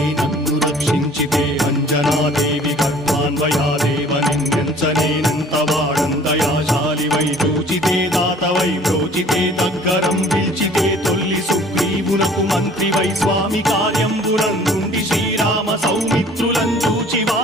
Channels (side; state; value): both; normal; correlation 0.51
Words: నన్ను రక్షించితే అంజనాదేవి కర్మాన్వయాదేవ నిన్నెంచనేనంత వాడంతయాశాలివై చూచితే దాతవై ప్రోచితే దగ్గరం పిలిచితే తొల్లి సుగ్రీవునకు మంత్రివై స్వామి కార్యంబునందుండి శ్రీరామ సౌమిత్రులం